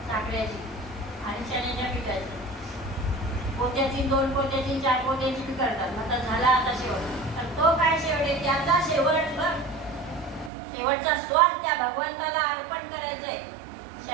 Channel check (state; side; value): drops out; left; at 10.5 s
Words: साखरेची आणि चण्याच्या पिठाची. पोत्याची, 2 पोत्याची, 4 पोत्याची बी करतात. आता झाला आता शेवट. तर तो काय शेवट आहे? त्याचा शेवट बघ. शेवटचा स्वाद त्या भगवंताला अर्पण करायचंय.